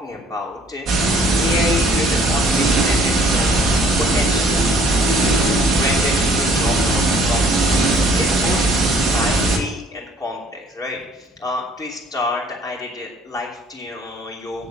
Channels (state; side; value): normal; both; correlation 0.58